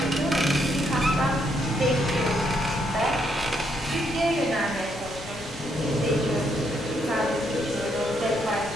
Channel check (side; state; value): left; noise; rumble, 17 dB below the sound